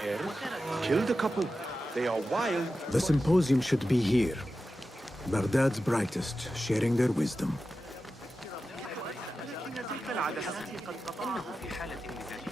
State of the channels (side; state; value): both; normal; correlation 0.92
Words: hair. Killed a couple. They are wild. The symposium should be here. Baghdad's brightest, sharing their wisdom.